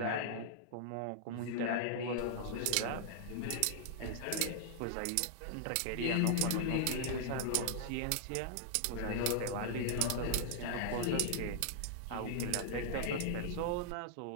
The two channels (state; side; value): different; both; correlation -0.01